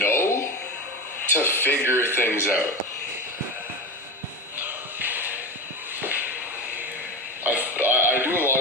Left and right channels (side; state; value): both; normal; correlation 0.24